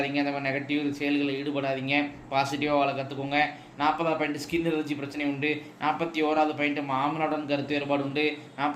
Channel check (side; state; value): both; identical; correlation 1.00